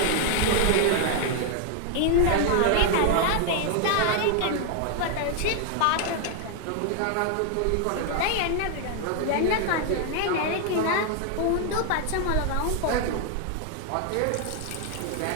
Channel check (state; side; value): different; both; correlation 0.00